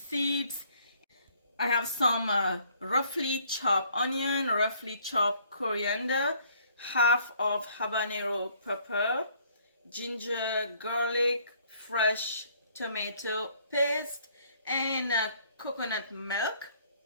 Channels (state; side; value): inverted; both; correlation -0.62